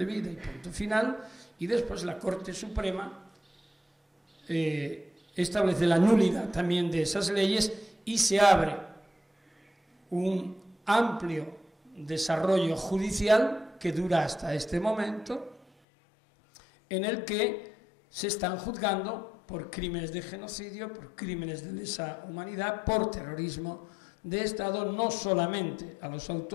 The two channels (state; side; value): drops out; right; at 15.7 s